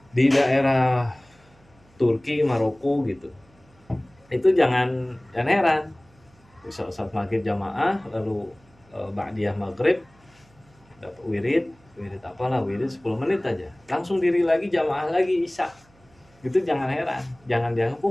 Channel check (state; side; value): noise; right; hum, 30 dB below the sound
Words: di daerah Turki, Maroko gitu, itu jangan heran. Saat maghrib jamaah lalu ba'diyah maghrib dapat wirid 10 menit aja langsung diri lagi jamaah lagi isya. Gitu jangan heran, jangan dianggap